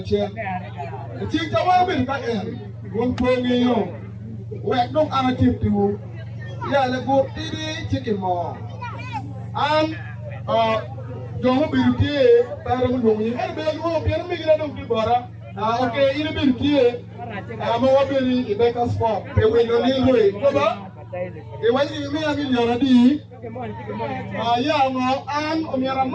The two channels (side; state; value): both; identical; correlation 1.00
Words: che. E tinja wa be ka e. Won ko ngi yo. We dong ana tip tu. Ya le go iri chicken mo. Don't be here, Param Lumi, and Bell European Migration to Bora. Okay, in a bit here, I'm over the Becca spot. They will not need way. It was in me a million. And on your